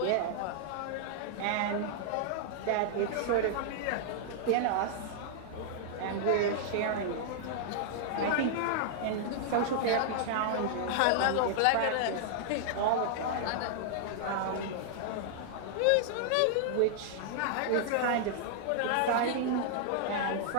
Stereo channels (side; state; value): both; different; correlation -0.01